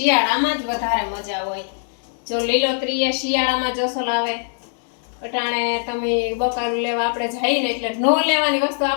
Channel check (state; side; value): silent; right; 63 dB below the other